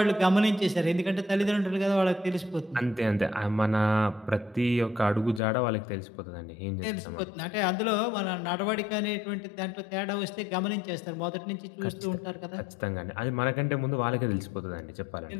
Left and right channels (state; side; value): drops out; right; at 5.4 s